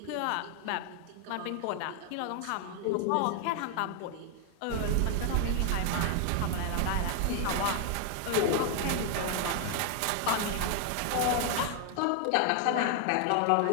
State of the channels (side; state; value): both; different; correlation 0.00